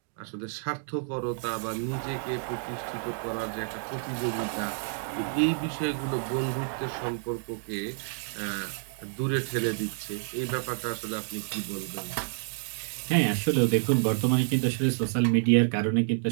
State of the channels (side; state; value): left; silent; digital silence